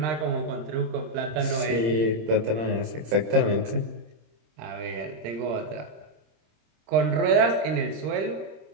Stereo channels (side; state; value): left; late; 26 ms